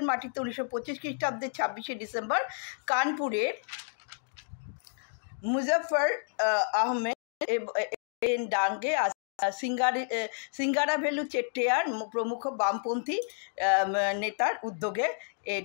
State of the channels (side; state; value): right; silent; 58 dB below the other